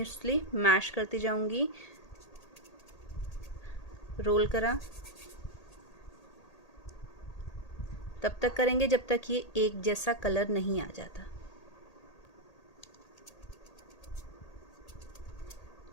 मैश करती जाऊंगी, रोल करा तब तक करेंगे जब तक ये एक जैसा कलर नहीं आ जाता।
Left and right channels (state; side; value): late; right; 1.8 ms